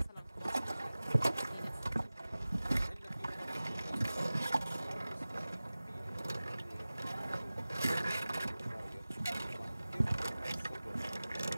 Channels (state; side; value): inverted; both; correlation -0.98